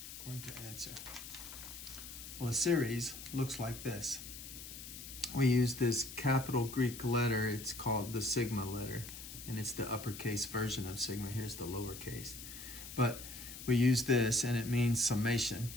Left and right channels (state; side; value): noise; left; hiss, 12 dB below the sound